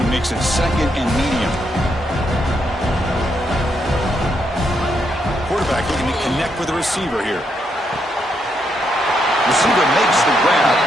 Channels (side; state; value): both; normal; correlation 0.78